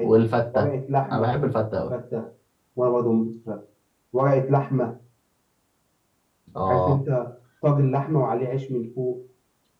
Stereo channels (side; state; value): both; identical; correlation 1.00